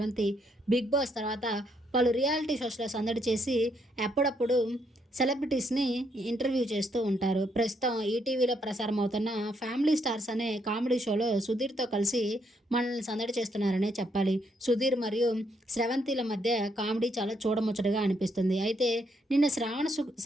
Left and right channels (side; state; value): both; normal; correlation 0.74